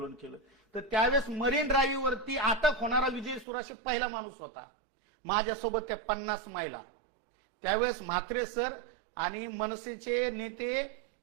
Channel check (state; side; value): drops out; left; at 3.5 s